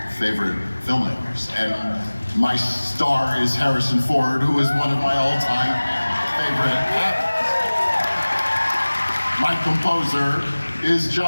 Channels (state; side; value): inverted; both; correlation -1.00